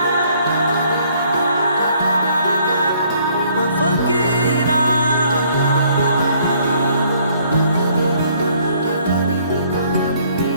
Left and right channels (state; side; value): inverted; both; correlation -0.63